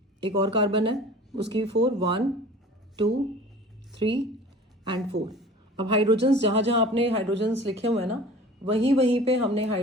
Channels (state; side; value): normal; both; correlation 0.43